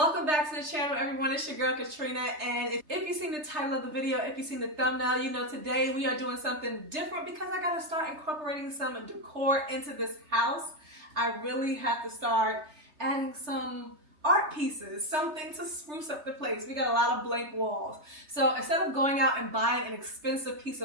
back to the channel, everyone. It's your girl Katrina, and if you've seen the title of the video, if you've seen the thumbnail, you know today we are doing something different because I gotta start incorporating some decor into this house. I really have to start adding some art pieces, something to spruce up the place. We got a lot of blank walls. So instead of going out and buying an expensive piece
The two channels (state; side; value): late; left; 3.3 ms